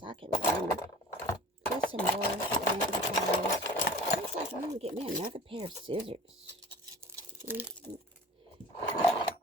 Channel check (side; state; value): both; normal; correlation 0.41